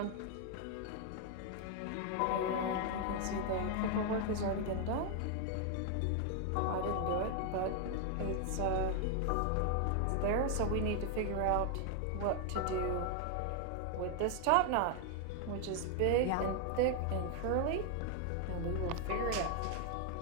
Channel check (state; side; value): different; both; correlation 0.00